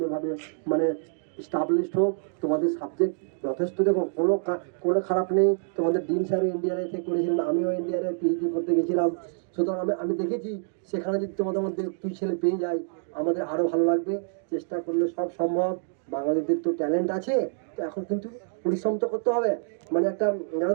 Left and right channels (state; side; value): silent; left; digital silence